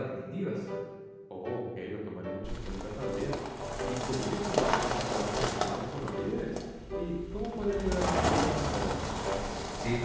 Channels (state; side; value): identical; both; correlation 1.00